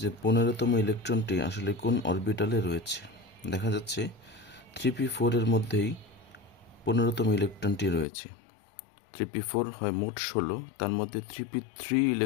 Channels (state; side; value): drops out; right; at 8.1 s